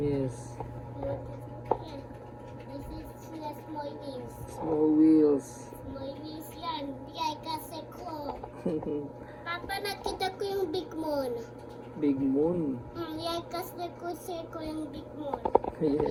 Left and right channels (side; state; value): both; identical; correlation 1.00